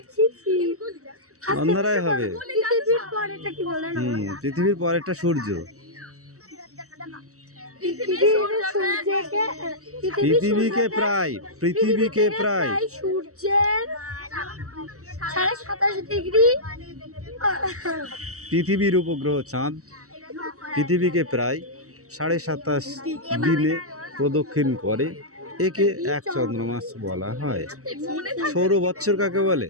অন্যরাই হবে। পৃথিবীর পরেরটা সূর্য। পৃথিবীকে প্রায় সূর্যের 27.5 ডিগ্রি। পৃথিবীর উপগ্রহ চাঁদ পৃথিবীকে প্রায় 27.5 দিনে প্রদক্ষিণ করে। একে এক চন্দ্রমাস বলা হয়। সৌর বৎসর কাকে বলে?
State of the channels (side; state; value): left; late; 0.65 ms